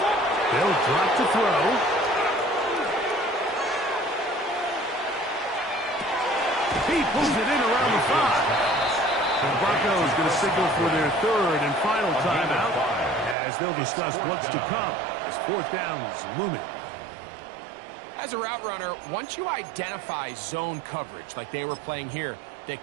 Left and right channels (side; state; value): left; drops out; at 13.4 s